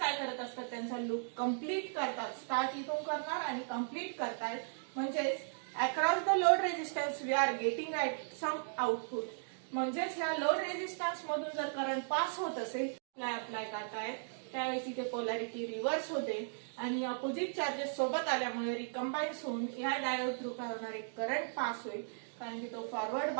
करत असतात, त्यांचा लूप कम्प्लीट करतात, स्टार्ट इथून करणार आणि कम्प्लीट करतात. म्हणजेच across the load resistance we are getting at some output. म्हणजेच ह्या लोड रेजिस्टन्स मधून जर करंट पास होत असेल, अप्लाय करतायत त्यावेळेस इथे पोलॅरिटी रिव्हर्स होते आणि अपोजिट चार्जेस सोबत आल्यामुळे रिकंबाईन होऊन या डायोड थ्रू काय होणार आहे, करंट पास होईल, कारण की तो फॉरवर्ड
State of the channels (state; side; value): silent; left; digital silence